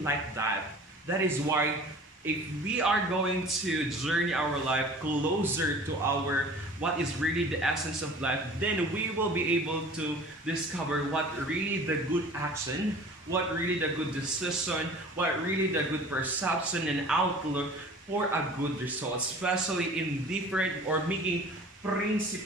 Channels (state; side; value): normal; both; correlation 0.44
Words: like that. That is why if we are going to journey our life closer to what is really the essence of life, then we will be able to discover what really the good action, what really the good decision, what really the good perception and outlook for a good result, especially in different or making